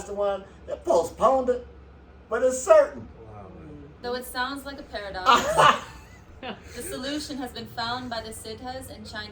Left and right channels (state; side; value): identical; both; correlation 1.00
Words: they postponed it, but it's certain. Wow, man. Though it sounds like a paradox, the solution has been found by the Siddhas and